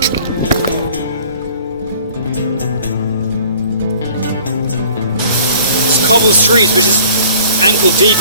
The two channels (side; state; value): both; inverted; correlation -0.50